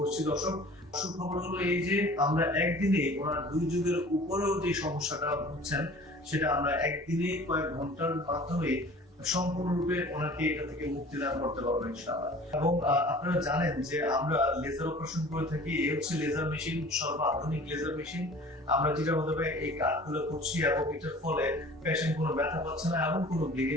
দর্শক, সুখবর হলো এই যে আমরা একদিনে ওনার 2 যুগের উপরেও যে সমস্যাটা ভুগছেন সেটা আমরা একদিনে কয়েক ঘন্টার মাধ্যমে সম্পূর্ণরূপে ওনাকে এটা থেকে মুক্তি দান করতে পারবো ইনশাআল্লাহ। এবং আপনারা জানেন যে আমরা লেজার অপারেশন করে থাকি। এই হচ্ছে লেজার মেশিন, সর্বাধুনিক লেজার মেশিন। আমরা যেটা মাধ্যমে এই কাজগুলো করছি এবং এটার ফলে পেশেন্ট কোনো ব্যথা পাচ্ছে না এবং কোনো ব্লিডিং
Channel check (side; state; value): both; normal; correlation 0.45